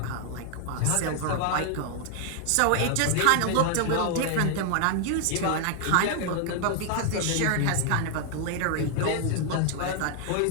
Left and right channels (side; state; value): both; different; correlation 0.00